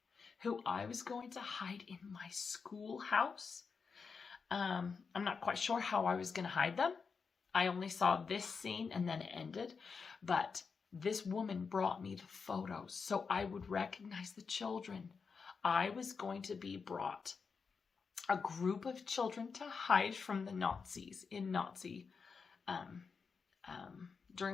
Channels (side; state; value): right; quieter; 5.3 dB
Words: who I was going to hide in my schoolhouse. I'm not quite sure how I was going to hide them. I only saw this scene and then it ended. But this woman brought me the photos so I would recognize the children. I was going to be brought a group of children to hide from the Nazis in